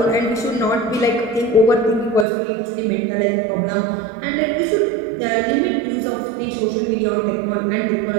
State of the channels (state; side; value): drops out; left; at 2.2 s